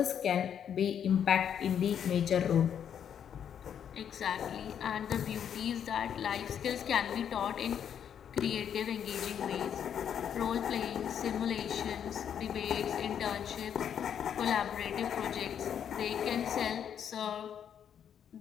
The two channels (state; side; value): quieter; right; 8.7 dB